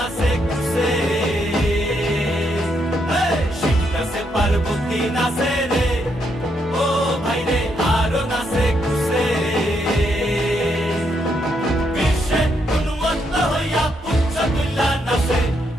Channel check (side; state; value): both; normal; correlation 0.77